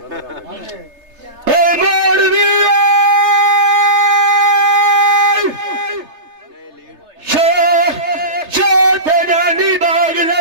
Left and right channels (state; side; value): late; left; 3.3 ms